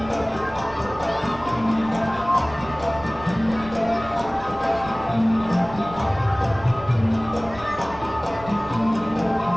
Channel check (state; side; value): noise; right; rumble, 17 dB below the sound